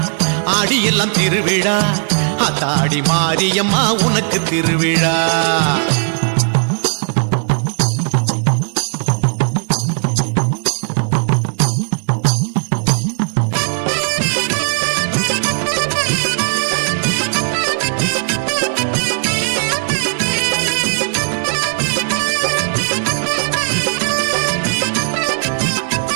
ஆடியெல்லாம் திருவிழா ஆத்தாடி மாரியம்மா உனக்கு திருவிழா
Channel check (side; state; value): left; silent; digital silence